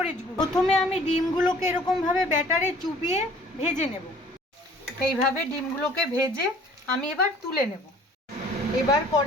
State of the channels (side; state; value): both; normal; correlation 0.52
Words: গুঁড়ো। প্রথমে আমি ডিমগুলোকে এরকমভাবে ব্যাটারে চুবিয়ে ভেজে নেব। এইভাবে ডিমগুলোকে ভেজে আমি এবার তুলে নেব। এবার